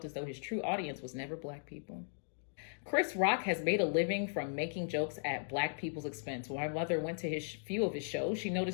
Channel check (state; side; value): silent; right; digital silence